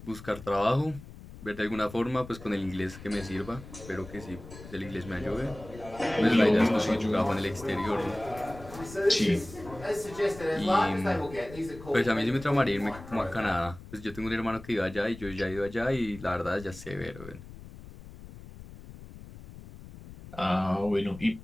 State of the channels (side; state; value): left; noise; rumble, 16 dB below the sound